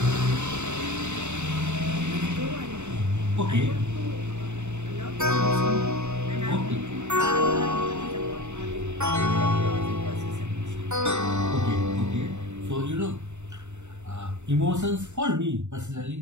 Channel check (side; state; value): left; late; 0.83 ms